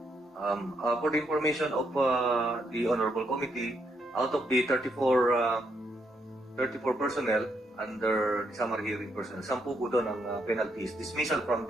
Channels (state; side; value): normal; both; correlation 0.76